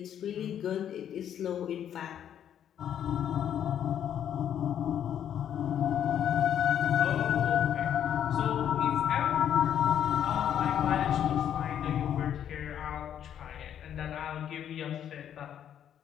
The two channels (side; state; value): right; quieter; 9.7 dB